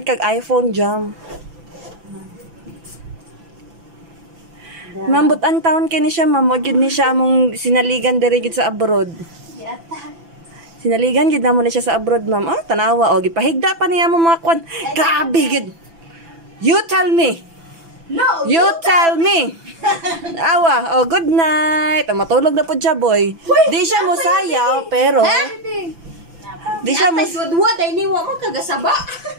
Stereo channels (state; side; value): late; left; 6.0 ms